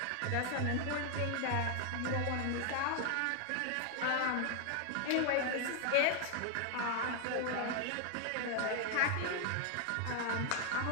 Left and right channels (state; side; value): different; both; correlation 0.01